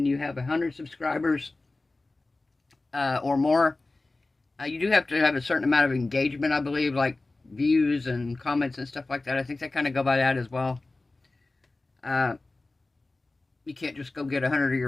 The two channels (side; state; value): right; quieter; 3.2 dB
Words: you have 100 subscribers or more, you do have to have a certain amount of engagement, I believe, like views and comments and stuff like that. I think they kind of go by that as well. You can't just go get 100 of